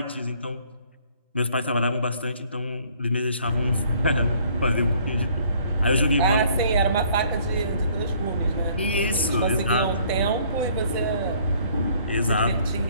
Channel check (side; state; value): both; inverted; correlation -0.60